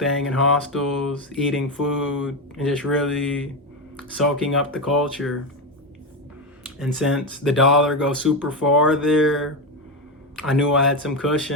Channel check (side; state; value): both; normal; correlation 0.13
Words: in hostels, eating food, and just really soaking up the culture. And since the dollar goes super far there, I knew I had some